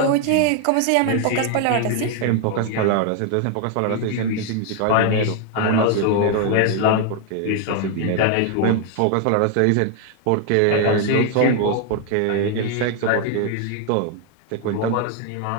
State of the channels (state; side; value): different; both; correlation 0.00